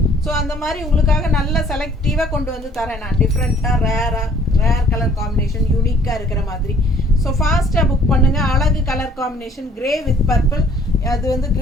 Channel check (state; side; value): normal; both; correlation 0.58